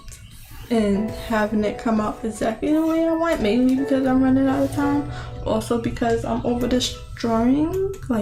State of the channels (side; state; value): both; identical; correlation 1.00